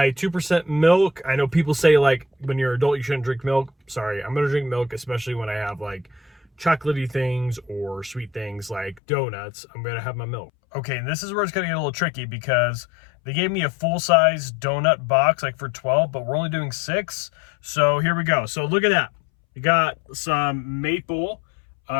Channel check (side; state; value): right; drops out; at 9.0 s